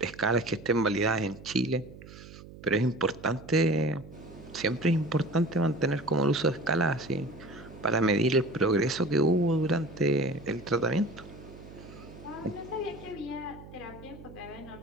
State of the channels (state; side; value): noise; right; hum, 17 dB below the sound